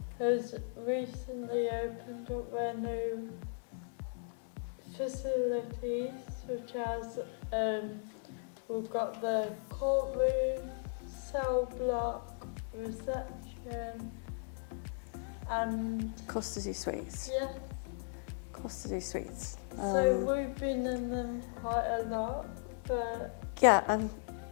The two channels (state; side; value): silent; right; digital silence